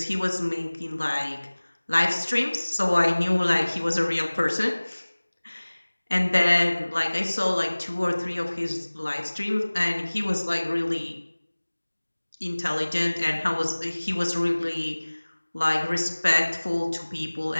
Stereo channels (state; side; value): inverted; both; correlation -1.00